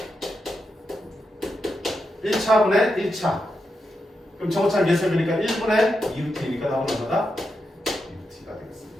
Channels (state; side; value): normal; both; correlation 0.86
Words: 1차분의 1차. 그럼 정오차 예습이니까 1분의 2루트이니까 답은 얼마다? 2루트가 되겠습니다.